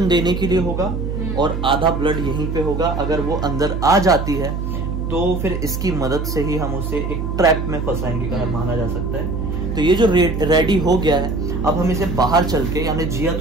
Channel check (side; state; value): right; noise; hum, 3 dB below the sound